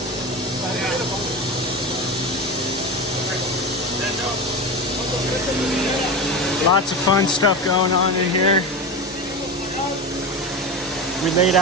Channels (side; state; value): both; normal; correlation 0.23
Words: Lots of fun stuff going on in here. We laid